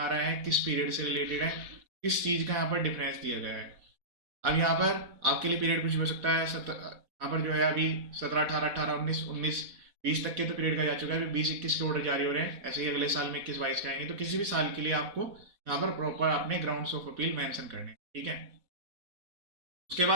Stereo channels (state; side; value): late; left; 4.1 ms